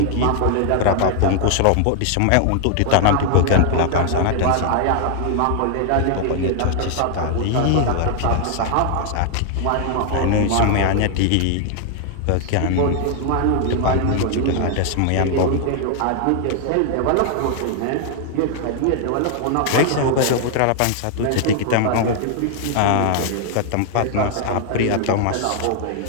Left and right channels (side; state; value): both; different; correlation 0.00